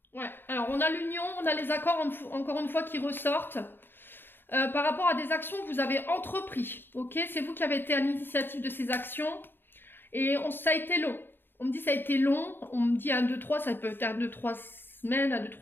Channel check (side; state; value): right; late; 0.098 ms